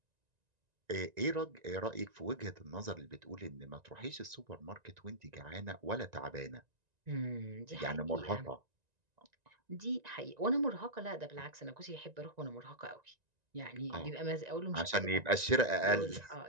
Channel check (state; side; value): late; left; 1.9 ms